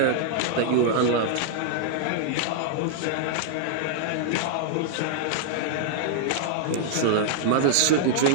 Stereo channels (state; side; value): different; both; correlation -0.01